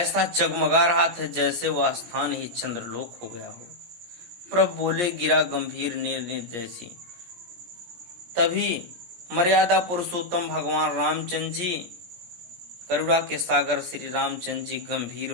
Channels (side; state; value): left; late; 17 ms